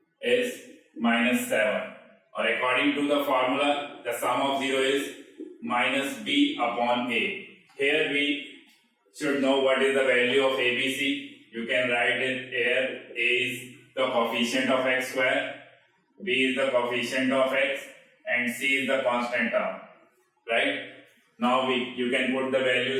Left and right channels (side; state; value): both; identical; correlation 1.00